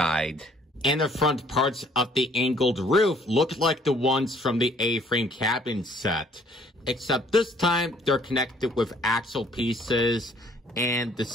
And the front parts of the angled roof look like the ones from the A-frame cabin set. Except this time, they're connected with axle pieces, and the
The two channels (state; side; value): normal; both; correlation 0.61